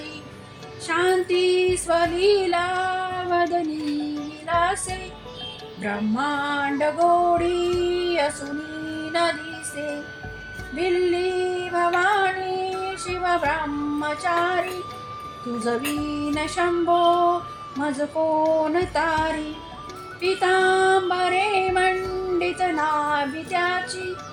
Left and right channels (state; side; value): identical; both; correlation 1.00